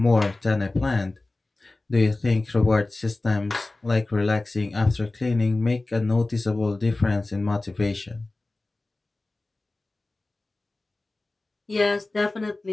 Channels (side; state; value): right; quieter; 3.0 dB